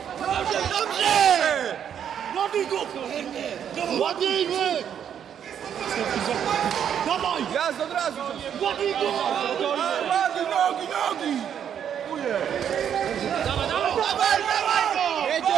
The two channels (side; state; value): left; quieter; 8.8 dB